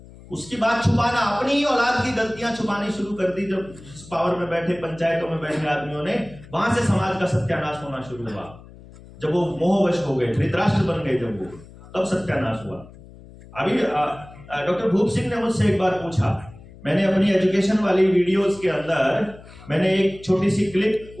उसकी बात छुपाना, अपनी ही औलाद की गलतियां छुपानी शुरू कर दी जब पावर में बैठे, पंचायतों में बैठे आदमियों ने, वहां से समाज का सत्यानाश होना शुरू हुआ। जब वो मोहवश हो गए, धृतराष्ट्र बन गए, जब वो, तब सत्यानाश हुआ। अभी डॉक्टर भूप सिंह ने मुझसे एक बार पूछा, मैंने अपनी एजुकेशन वाली वीडियोस के अंदर मैंने एक छोटी सी क्लिप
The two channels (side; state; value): left; noise; hum, 20 dB below the sound